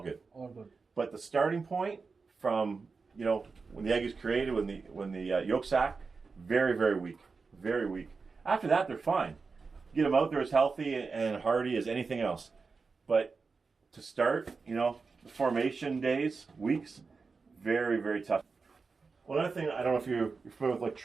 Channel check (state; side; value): quieter; left; 4.6 dB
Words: good. All good. But the starting point from, when the egg is created, when the yolk sac, very, very weak. Very weak. After that, they're fine. Get them out there as healthy and hardy as anything else. But to start, the formation days, weeks, very, very tough. One other thing, I don't know if you're familiar with